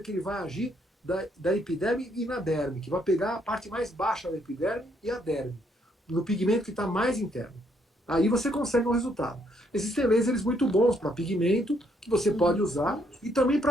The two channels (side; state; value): both; normal; correlation 0.71